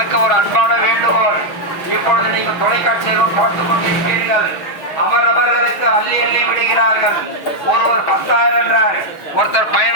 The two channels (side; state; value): right; late; 6.2 ms